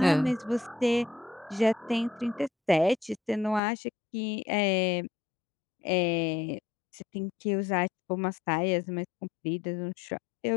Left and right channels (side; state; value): right; drops out; at 3.6 s